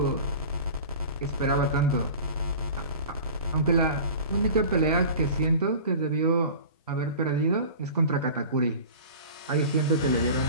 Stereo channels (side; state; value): both; inverted; correlation -0.39